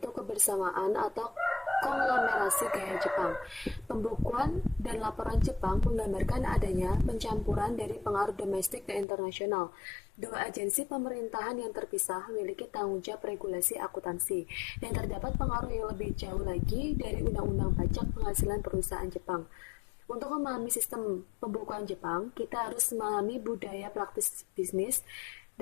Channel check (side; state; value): right; drops out; at 9.1 s